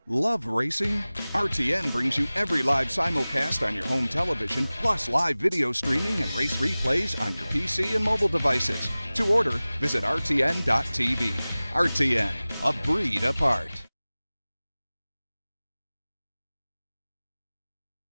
Love racing? RTN brings you every live simulcast on your home television, plus live video streaming and race replays on your PC and mobile devices. To order, visit rtn.tv. RTN, a breed apart.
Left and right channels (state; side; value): inverted; both; correlation -0.98